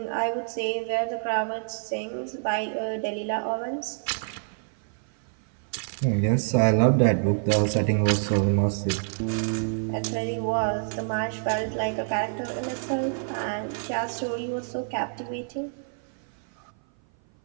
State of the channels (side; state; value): left; silent; 56 dB below the other